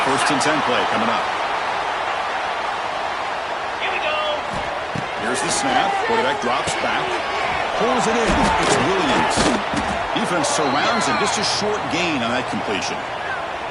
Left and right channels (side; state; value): both; identical; correlation 1.00